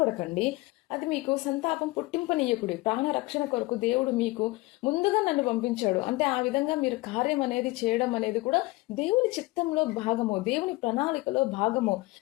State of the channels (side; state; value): right; quieter; 21.6 dB